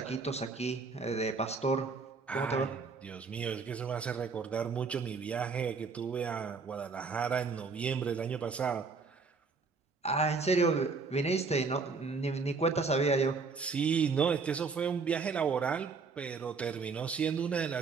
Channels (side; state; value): left; quieter; 4.7 dB